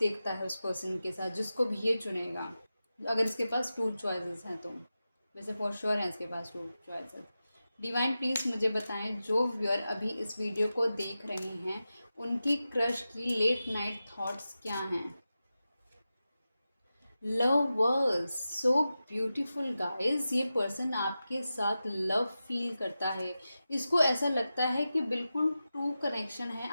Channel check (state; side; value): inverted; both; correlation -0.93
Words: है उस पर्सन के साथ, जिसको भी ये चुनेगा। अगर इसके पास टू चॉइसेस हैं तो, वैसे फॉर श्योर है इसके पास टू चॉइसेस। डिवाइन प्लीज़ मुझे बताएं, जो व्यूअर अभी इस वीडियो को देख रहे हैं उनकी क्रश की लेट नाइट थॉट्स क्या हैं। Lovers, so beautiful guys. ये पर्सन आपके साथ लव फील करता है, इसको ऐसा लगता है कि बिल्कुल ट्रू कनेक्शन है